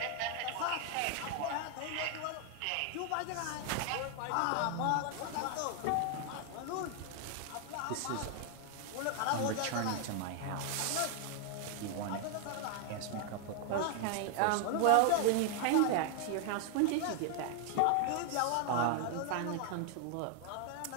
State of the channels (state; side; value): different; both; correlation 0.00